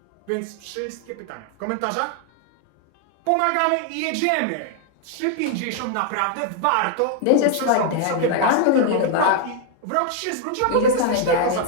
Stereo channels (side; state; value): both; different; correlation 0.00